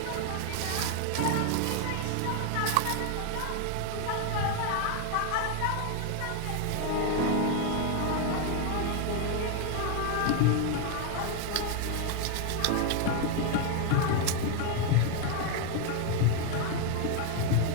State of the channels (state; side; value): different; both; correlation 0.01